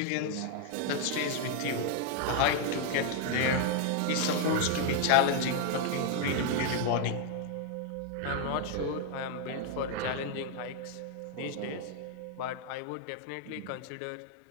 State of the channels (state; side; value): different; both; correlation 0.00